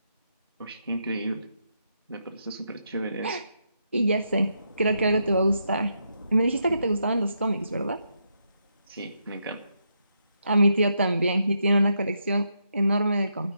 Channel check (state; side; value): inverted; both; correlation -0.81